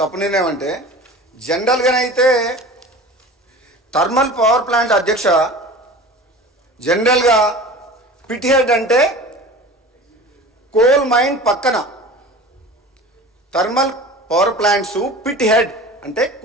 నిర్ణయం అంటే, జనరల్గానైతే థర్మల్ పవర్ ప్లాంట్ అధ్యక్ష, జనరల్గా పిట్ హెడ్ అంటే కోల్ మైన్ పక్కన, thermal power plants pit head అంటే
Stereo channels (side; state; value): both; normal; correlation 0.38